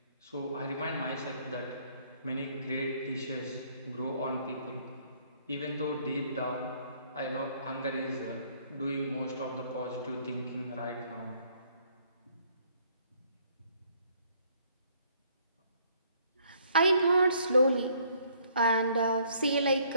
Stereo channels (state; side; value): inverted; both; correlation -0.64